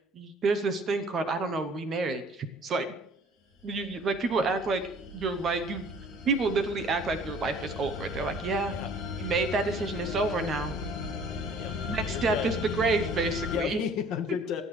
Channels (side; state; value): both; normal; correlation 0.52